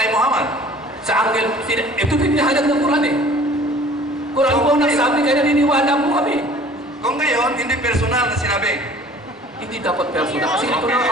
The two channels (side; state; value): both; normal; correlation 0.49